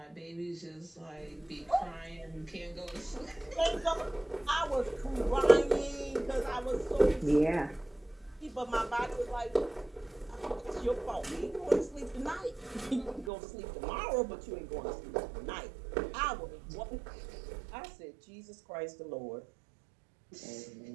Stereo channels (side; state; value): left; drops out; at 13.3 s